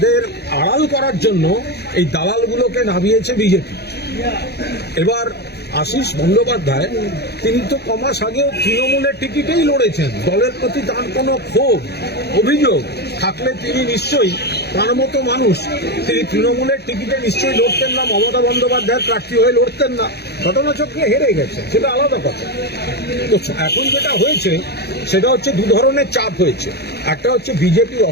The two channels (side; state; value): right; late; 0.48 ms